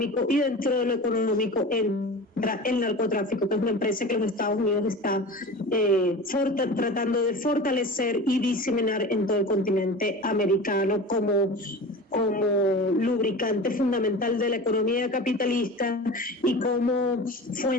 y dentro de lo económico entra el narcotráfico, que es una empresa que los Estados Unidos está tratando de fortalecer y diseminar en todo el continente americano como lubricante fundamental de la economía capitalista y como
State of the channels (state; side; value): normal; both; correlation 0.34